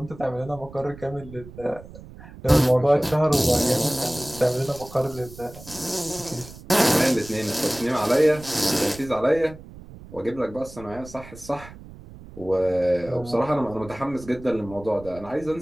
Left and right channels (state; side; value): noise; right; rumble, 17 dB below the sound